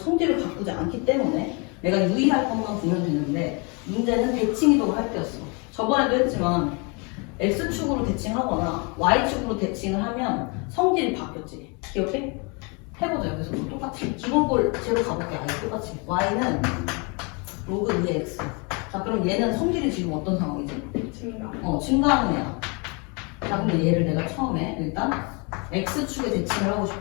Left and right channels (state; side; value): quieter; right; 32.5 dB